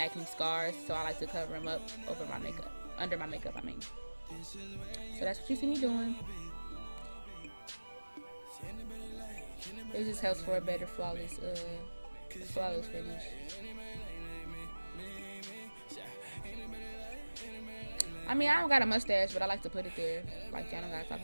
scars, so I like to cover them up over my makeup, under my makeup. So that's what you see me doing. It just helps for a better flawless finish. I mean, I don't got a mustache, but I like to put it there. Like, y'all don't gotta talk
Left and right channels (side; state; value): both; inverted; correlation -1.00